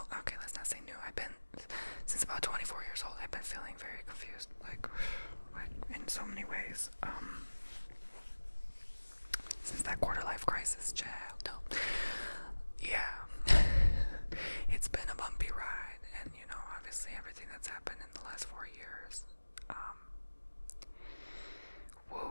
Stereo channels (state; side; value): inverted; both; correlation -1.00